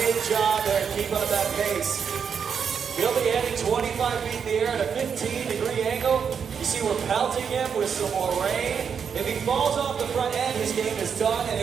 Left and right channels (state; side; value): quieter; left; 6.9 dB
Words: job there. Keep up that pace. He'll be heading 25 feet in the air at a 15-degree angle. You see we're pelting him with some more rain. If he falls off the front end, his game is done, and